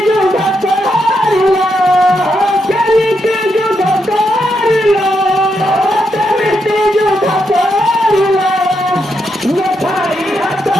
যুদ্ধ করিল কেমিতি যুদ্ধ করিল কেমিতি যুদ্ধ করিল নথাই হাত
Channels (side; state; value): both; normal; correlation 0.81